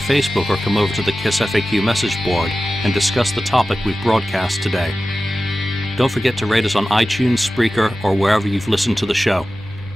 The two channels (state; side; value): normal; both; correlation 0.95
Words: or come over to the KissFAQ message board and discuss the topic we've broadcast today. Don't forget to rate us on iTunes, Spreaker, or wherever you've listened to the show.